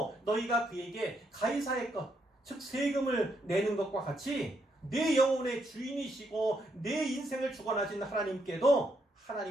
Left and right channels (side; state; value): both; normal; correlation 0.77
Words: 너희가 그에게 가이사의 것, 즉 세금을 내는 것과 같이 내 영혼의 주인이시고 내 인생을 주관하신 하나님께도